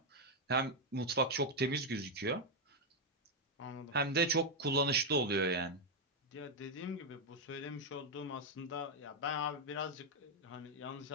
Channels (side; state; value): both; normal; correlation 0.01